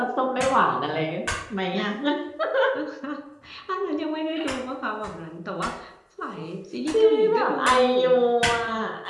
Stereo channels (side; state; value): both; identical; correlation 1.00